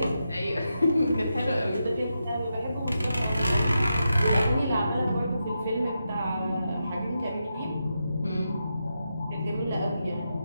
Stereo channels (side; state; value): both; inverted; correlation -0.87